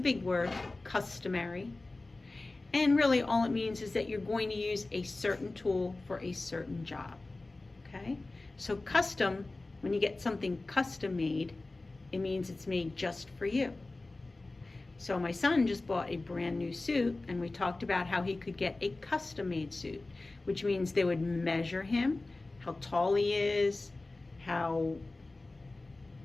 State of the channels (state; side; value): quieter; right; 3.1 dB